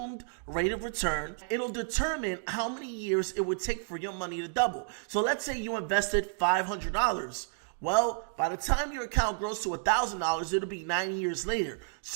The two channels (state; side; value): silent; left; digital silence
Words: rate of return, it'll determine how many years it would take for your money to double. So let's say you invested $500. Well, by the time your account grows to $1,000, it'll be 9 years later.